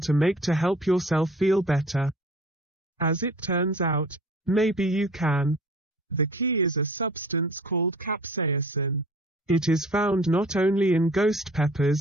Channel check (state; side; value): normal; both; correlation 0.47